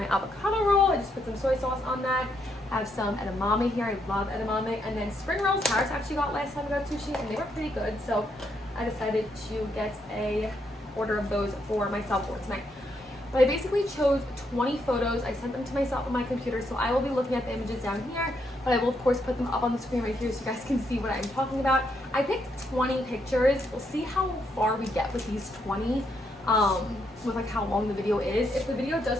avocado roll. I just put some soy sauce on that. I have some edamame here. I love edamame. And then spring rolls. Harris actually got last time I got sushi, and they were pretty good. So I decided to get a order of those for myself for tonight. But I basically chose 20 photos. I sent them to myself on my computer, so I will be looking at the images down here, but I will of course put them up on the screen right here so you guys can see what I'm talking about. I picked 20 pictures. We'll see how far we get with these 20, with like how long the video is. If the video does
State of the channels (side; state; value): both; normal; correlation 0.77